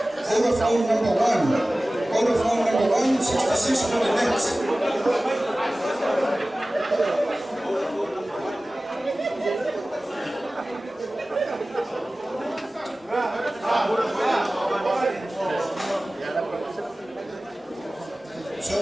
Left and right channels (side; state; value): both; normal; correlation 0.97